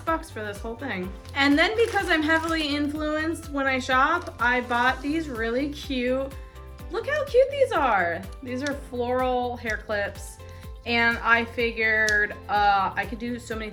for this whole thing. And then because I'm heavily influenced when I shop, I bought these really cute, look how cute these are. These are floral hair clips. And I figured I could do so many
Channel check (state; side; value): identical; both; correlation 1.00